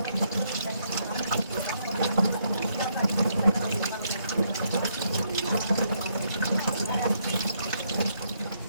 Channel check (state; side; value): inverted; both; correlation -0.74